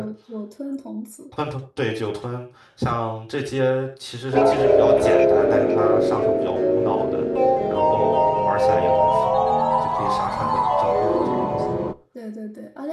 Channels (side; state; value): both; identical; correlation 1.00